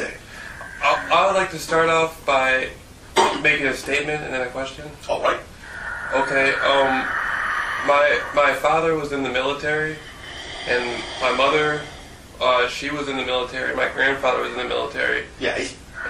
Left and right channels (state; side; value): identical; both; correlation 1.00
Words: I would like to start off by making a statement and then a question. All right. Okay. My father was in the military, and my mother, she was in the military. My grandfather was in the military. Yes.